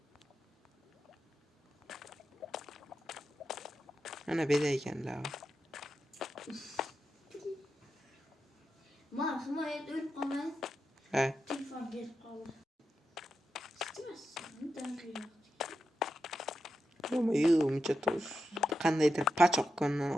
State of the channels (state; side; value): normal; both; correlation 0.88